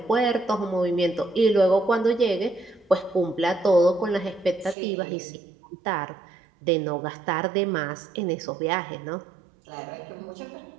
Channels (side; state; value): left; drops out; at 4.8 s